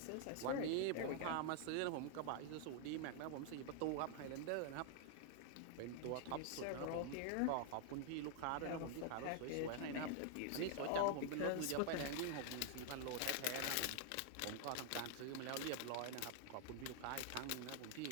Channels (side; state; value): both; different; correlation 0.00